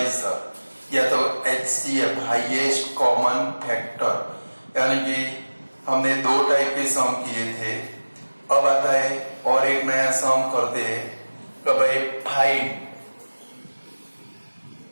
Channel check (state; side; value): inverted; both; correlation -1.00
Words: या तो HCF हाईएस्ट कॉमन फैक्टर। यानी कि हमने दो टाइप के सम किए थे। अब आता है और एक नया सम करते हैं कि भाई find